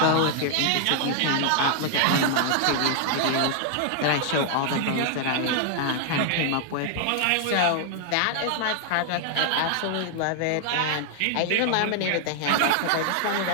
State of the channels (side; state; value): both; different; correlation 0.00